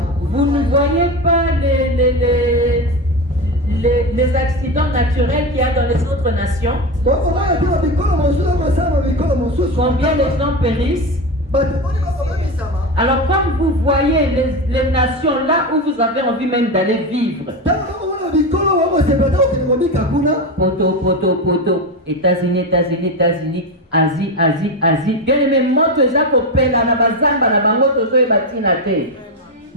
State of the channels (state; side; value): normal; both; correlation 0.18